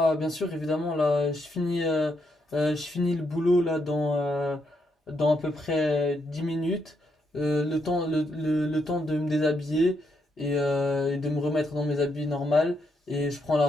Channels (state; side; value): normal; both; correlation 0.78